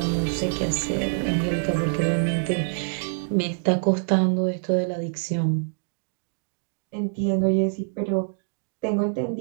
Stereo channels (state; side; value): silent; left; digital silence